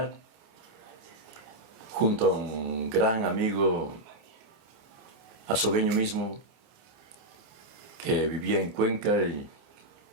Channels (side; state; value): left; late; 29 ms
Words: junto a un gran amigo azogueño mismo, que vivía en Cuenca y